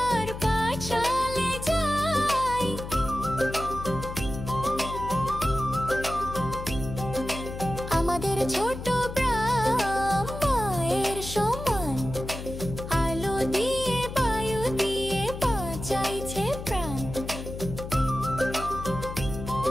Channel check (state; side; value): noise; left; hum, 9 dB below the sound